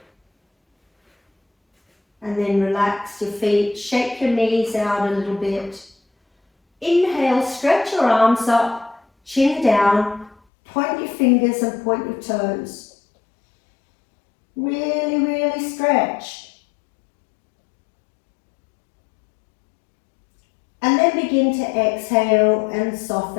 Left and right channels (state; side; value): drops out; right; at 10.4 s